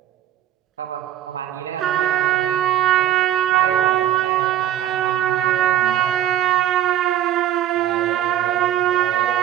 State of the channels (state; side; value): quieter; left; 11.7 dB